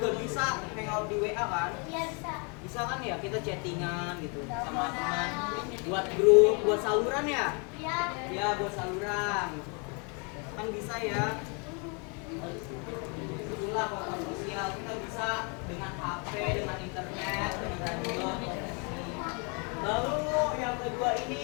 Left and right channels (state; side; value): quieter; right; 34.6 dB